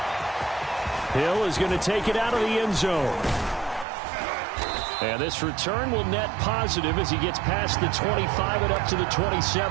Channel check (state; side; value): drops out; left; at 3.9 s